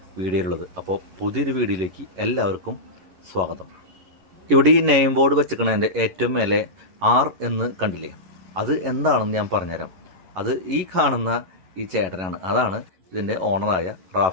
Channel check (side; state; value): left; late; 11 ms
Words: വീഡിയോയിലുള്ളത്. അപ്പോൾ പുതിയൊരു വീഡിയോയിലേക്ക് എല്ലാവർക്കും സ്വാഗതം. ഇവിടെ ഈ നെയിം ബോർഡ് വെച്ചിരിക്കണതിൻ്റെ ഏറ്റവും മേലെ ആർ എന്ന് കണ്ടില്ലേ, അത് എന്താണെന്ന് ഞാൻ പറഞ്ഞുതരാം. അത് ഈ കാണുന്ന ഈ ചേട്ടനാണ്, അതാണ് ഇതിൻ്റെ ഓണറായ